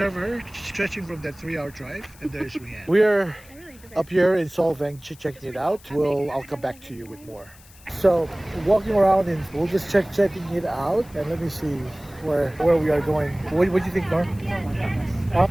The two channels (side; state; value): left; noise; hiss, 24 dB below the sound